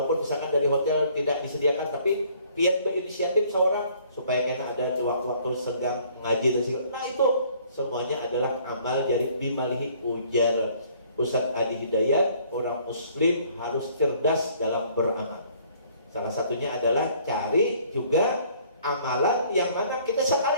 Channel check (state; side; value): inverted; both; correlation -0.59